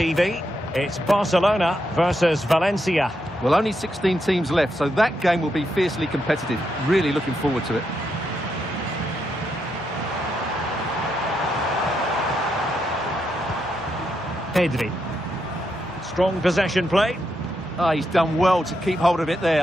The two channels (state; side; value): normal; both; correlation 0.82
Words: It's Barcelona versus Valencia. Well, only 16 teams left, so that game will be fiercely competitive. Really looking forward to it. Pedri. Strong possession play. Ah, he's done well to keep hold of it